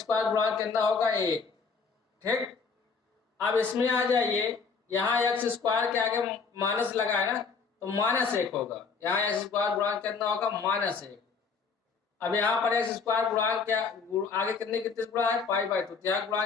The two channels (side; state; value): right; quieter; 5.2 dB